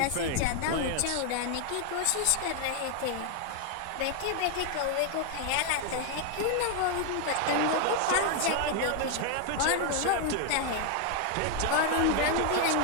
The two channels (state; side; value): different; both; correlation 0.00